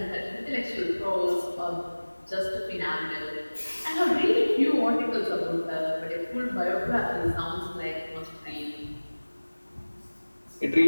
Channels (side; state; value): both; inverted; correlation -1.00